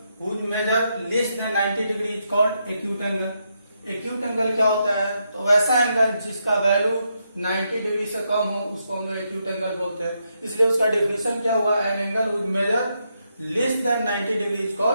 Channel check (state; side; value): inverted; both; correlation -0.81